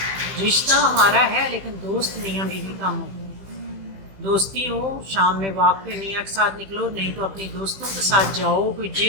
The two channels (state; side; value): late; left; 15 ms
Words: رشتہ ہمارا ہے لیکن دوست میاں بیوی کم ہو، دوستی ہو، شام میں واک پہ میاں کے ساتھ نکلو، نہیں تو اپنی دوستوں کے ساتھ جاؤ، کوئی